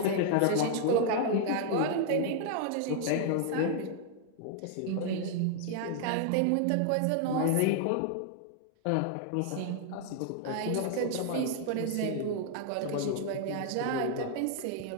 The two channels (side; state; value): both; different; correlation 0.00